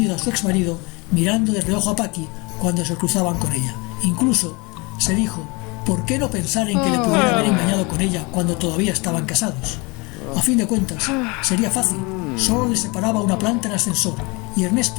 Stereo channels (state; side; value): quieter; right; 27.4 dB